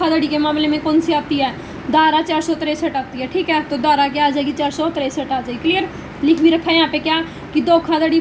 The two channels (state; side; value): identical; both; correlation 1.00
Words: के मामले में कौन सी आती है धारा 463 आती है, ठीक है। तो धारा क्या आ जाएगी 463 आ जाएगी, क्लियर। लिख भी रखा है यहाँ पे क्या कि धोखाधड़ी